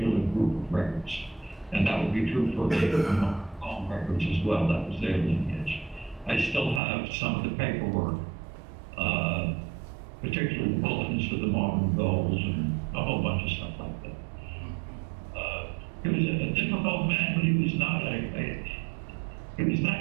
group of records. And that would be true for the home records as well. That was their lineage. I still have some of the paperwork, particularly the bulletins for the Marvin Goals and a whole bunch of stuff like that. He was a difficult man, but he was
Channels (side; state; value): left; drops out; at 6.8 s